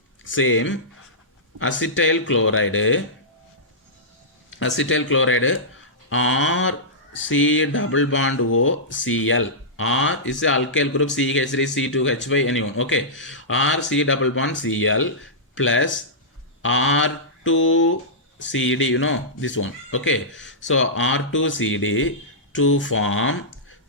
same acetyl chloride R C double bond O Cl. R is the alkyl group CH3 C2H5 anyone. Okay, R C double bond Cl plus R2CD, you know this one. Okay, so R2CD to form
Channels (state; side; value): normal; both; correlation -0.14